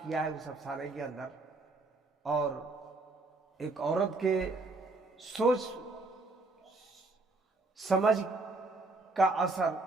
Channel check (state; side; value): quieter; left; 3.3 dB